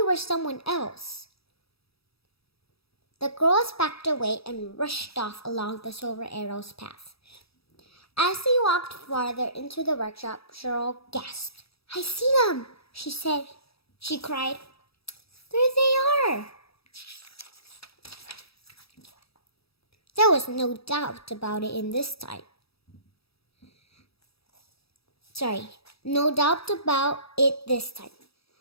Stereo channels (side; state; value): right; late; 0.77 ms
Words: were someone else." The girls backed away and rushed off along the Silver Arrow's path. As they walked farther into the workshop, Cheryl gasped. "I see them," she said. She cried, "There they are!" There was no doubt about it this time.